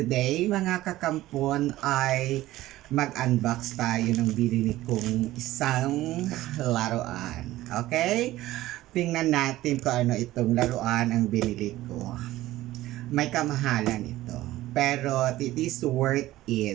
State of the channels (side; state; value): left; quieter; 16.0 dB